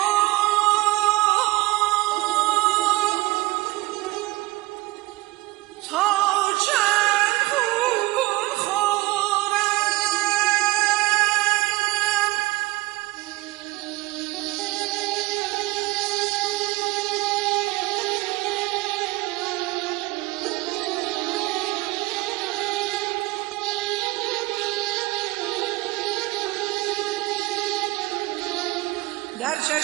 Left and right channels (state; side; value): quieter; left; 20.0 dB